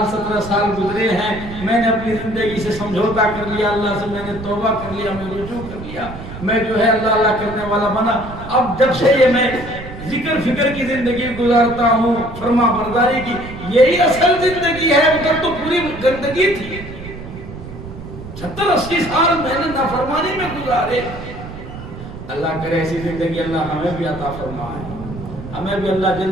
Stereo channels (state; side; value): noise; right; rumble, 12 dB below the sound